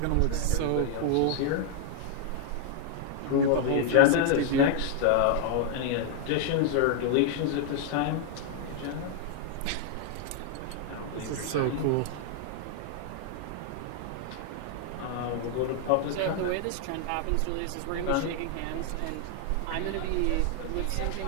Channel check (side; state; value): both; different; correlation 0.00